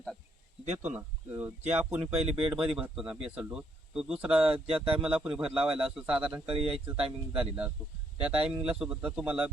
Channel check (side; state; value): both; normal; correlation 0.72